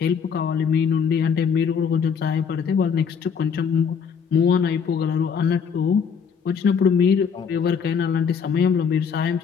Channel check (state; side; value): quieter; right; 6.6 dB